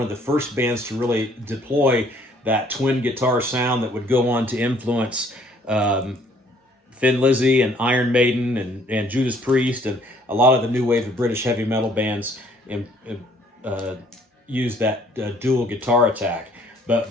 of the first bands to really deploy that twin guitar sound that would go on to influence Thin Lizzy and Iron Maiden and Judas Priest and a lot of the new wave of British heavy metal bands use that dual guitar attack. But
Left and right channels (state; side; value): normal; both; correlation 0.61